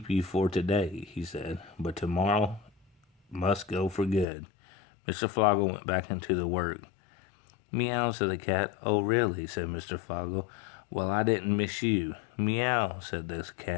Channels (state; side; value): drops out; right; at 4.2 s